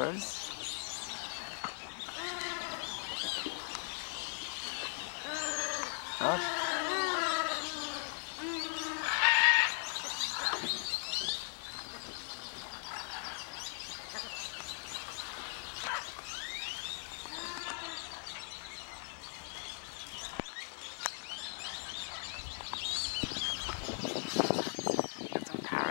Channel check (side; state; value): right; silent; 52 dB below the other